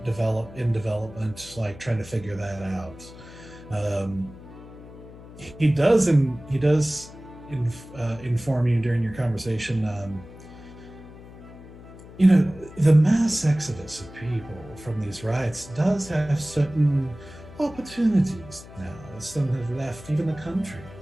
development, like trying to figure that out. Um, he does inform you during your conversation. The mass exodus of people from these riots does have certain opportunities now, as some have left even the country.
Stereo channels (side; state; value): left; noise; hum, 17 dB below the sound